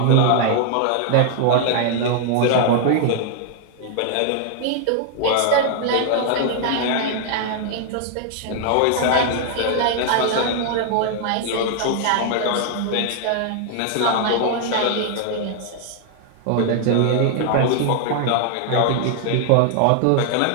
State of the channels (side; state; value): both; different; correlation 0.00